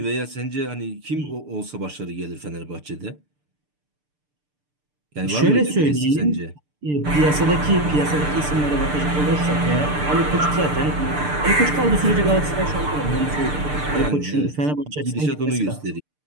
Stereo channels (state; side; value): late; left; 6.7 ms